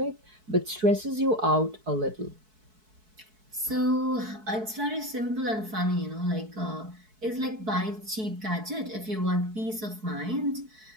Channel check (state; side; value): late; left; 4.6 ms